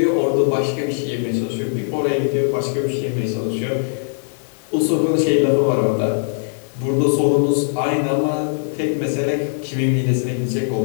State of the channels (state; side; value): silent; right; 61 dB below the other